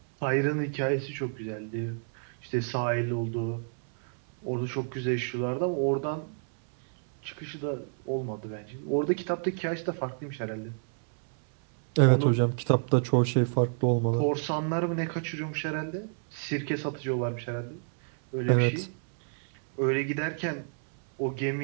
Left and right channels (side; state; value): left; silent; 58 dB below the other